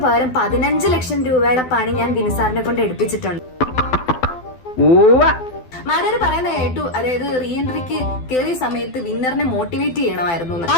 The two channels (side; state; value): right; late; 12 ms